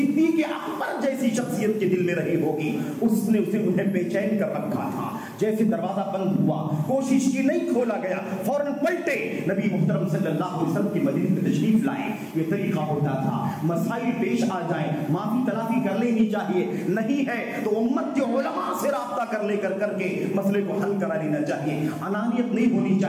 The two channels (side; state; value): both; identical; correlation 1.00